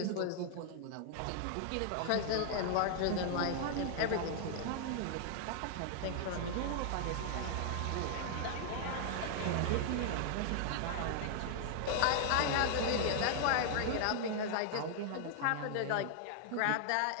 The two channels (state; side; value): different; both; correlation 0.00